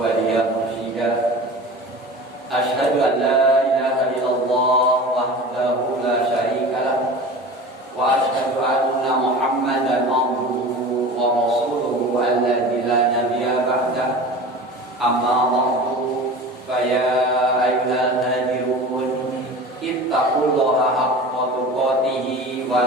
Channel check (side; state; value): both; normal; correlation 0.36